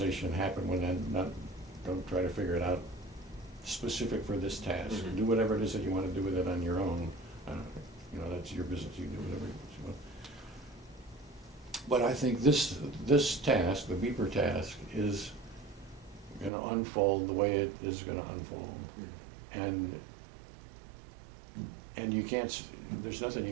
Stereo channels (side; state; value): left; drops out; at 16.5 s